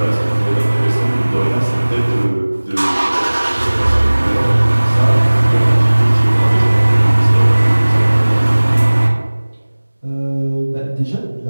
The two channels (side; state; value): both; inverted; correlation -1.00